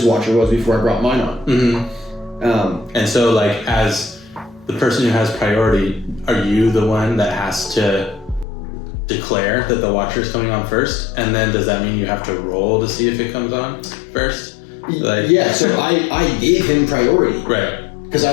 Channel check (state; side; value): drops out; right; at 8.5 s